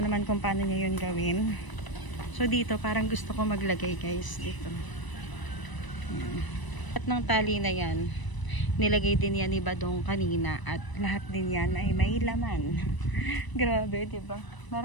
kung paano niya 'yun gawin. So dito parang gusto ko maglagay guys dito. Ayan. At ng tali na 'yan, nilagay din yan ni Badong kanina at lahat din yan ay may laman. Grabe, 'di ba?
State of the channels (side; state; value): right; late; 1.0 ms